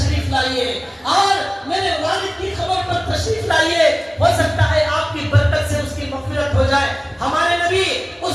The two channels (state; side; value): identical; both; correlation 1.00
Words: لائیے اور میرے والد کی خبر پر تشریف لائیے, ہو سکتا ہے آپ کی برکت سے اس کی مغفرت ہو جائے. ہمارے نبی اس